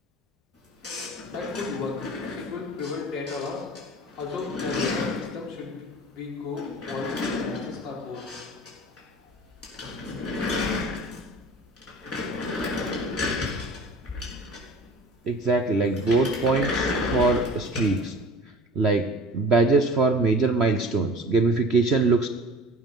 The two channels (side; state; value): both; normal; correlation 0.42